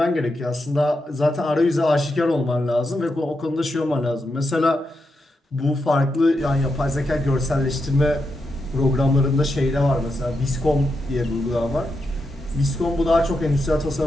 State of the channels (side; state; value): both; normal; correlation 0.85